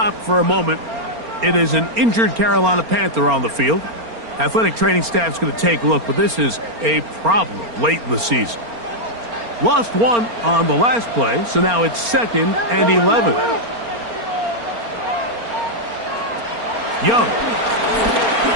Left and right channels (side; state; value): left; late; 4.3 ms